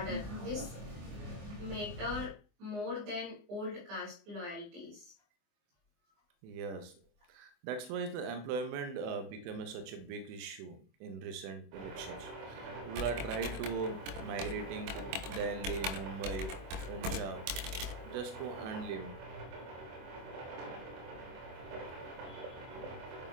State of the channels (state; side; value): late; left; 24 ms